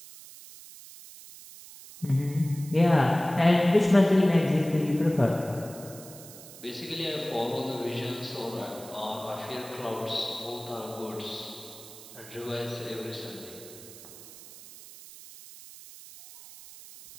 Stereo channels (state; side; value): noise; right; hiss, 17 dB below the sound